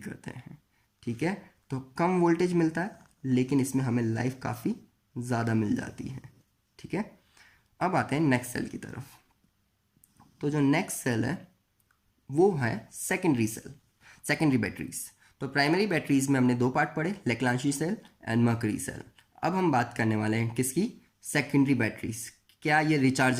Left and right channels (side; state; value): both; identical; correlation 1.00